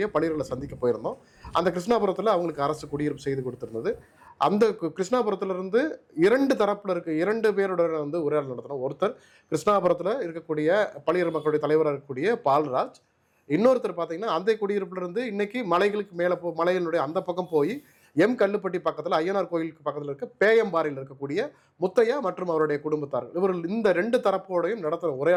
பளியர்களை சந்திக்க போயிருந்தோம். அந்த கிருஷ்ணாபுரத்தில் அவங்களுக்கு அரசு குடியிருப்பு செய்து கொடுத்துருந்தது. அந்த கிருஷ்ணாபுரத்திலிருந்து 2 தரப்பில் இருக்க 2 பேரோட வந்து உரையாடல் நடத்தினோம். ஒருத்தர் கிருஷ்ணாபுரத்தில் இருக்கக்கூடிய பளியர் மக்களுடைய தலைவராக இருக்கக்கூடிய பால்ராஜ், இன்னொருத்தர் பார்த்தீங்கன்னா அந்த குடியிருப்பிலிருந்து இன்னைக்கு மலைகளுக்கு மேலே மலைகளுடைய அந்த பக்கம் போய் கல்லுப்பட்டி பக்கத்தில் ஐயனார் கோயிலுக்கு பக்கத்தில் இருக்க பேயம்பாறையில் இருக்கக்கூடிய முத்தையா மற்றும் அவருடைய குடும்பத்தார்கள். இவர்கள் இந்த 2 தரப்போடையும் நடத்துகிற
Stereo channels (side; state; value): both; identical; correlation 1.00